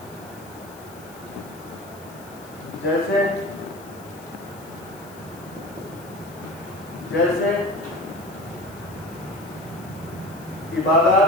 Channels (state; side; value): noise; left; hiss, 21 dB below the sound